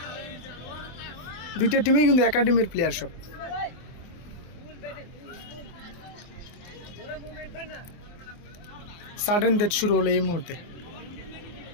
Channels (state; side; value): late; right; 24 ms